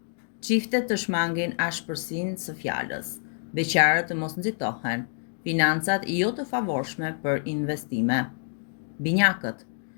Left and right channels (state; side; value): silent; right; 60 dB below the other